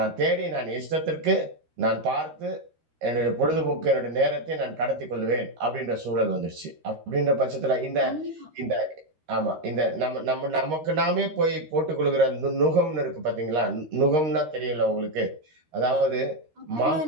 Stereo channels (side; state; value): left; late; 13 ms